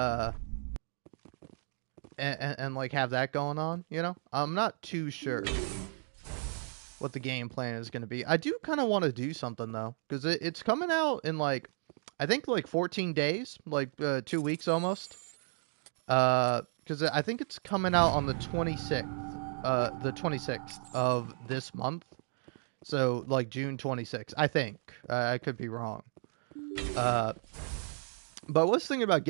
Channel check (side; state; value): left; silent; 55 dB below the other